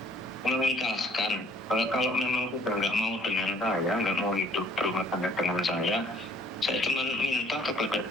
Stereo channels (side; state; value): both; normal; correlation 0.58